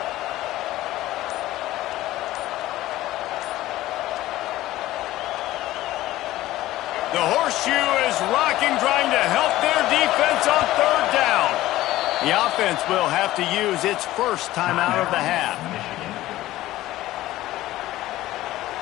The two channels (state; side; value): quieter; right; 15.9 dB